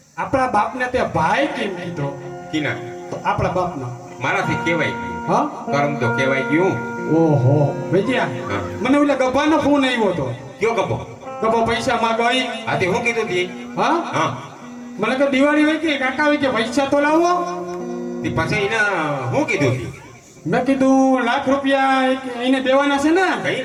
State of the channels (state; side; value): identical; both; correlation 1.00